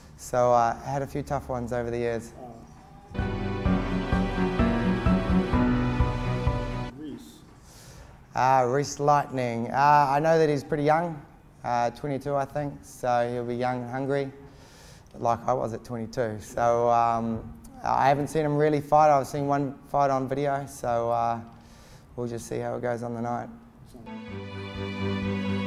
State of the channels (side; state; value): both; identical; correlation 1.00